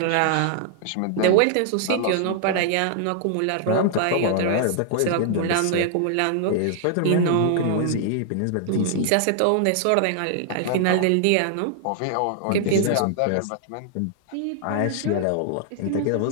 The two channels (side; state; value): both; different; correlation 0.00